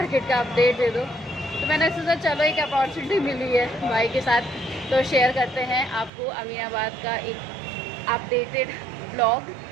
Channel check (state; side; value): drops out; left; at 6.1 s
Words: का अपडेट दे दो। तो मैंने सोचा चलो एक अपॉर्चुनिटी मिली है भाई के साथ, तो शेयर करते हैं आपको अमीनाबाद का एक अपडेटेड ब्लॉग।